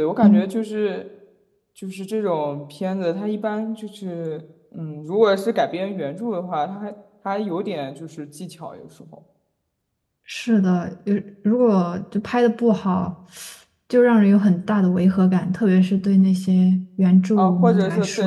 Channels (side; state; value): both; identical; correlation 1.00